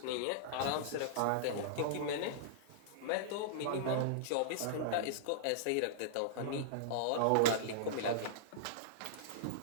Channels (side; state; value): both; different; correlation -0.02